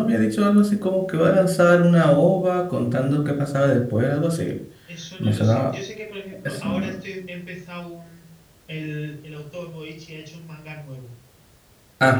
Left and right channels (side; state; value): both; identical; correlation 1.00